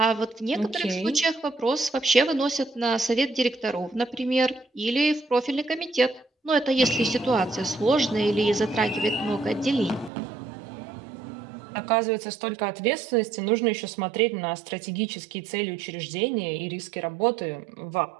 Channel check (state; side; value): drops out; left; at 10.1 s